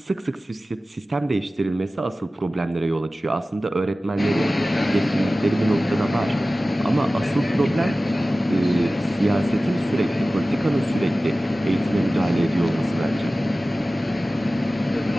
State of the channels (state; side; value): normal; both; correlation 0.96